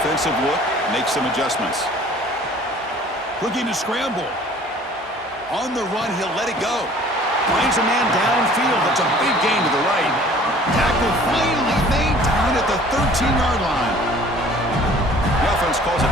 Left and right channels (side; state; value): both; normal; correlation 0.51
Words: look, makes some adjustments. Looking to scramble. On the run, he'll let it go. Finds a man downfield. That's a big gain to the right. Tackle finally made down at the 13-yard line. The offense calls a